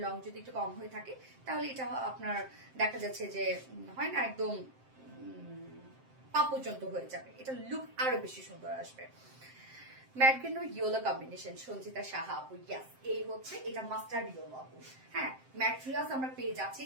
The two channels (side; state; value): left; late; 7.7 ms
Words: লং যদি একটু কম হয়ে থাকে তাহলে এটা আপনার দেখা যাচ্ছে যে হয় না একদম পা পর্যন্ত হয়ে যাবে, এটা লুক আরো বেশি সুন্দর আসবে। ম্যাটগ্রিন ও ইয়েলো কম্বিনেশন, সঞ্চিতা সাহা আপু। ইয়াস, এই হচ্ছে এটা মাস্টার্ড ইয়েলো আপু। হ্যাঁ, ম্যাটেরিয়ালস আমরা পেয়ে যাচ্ছি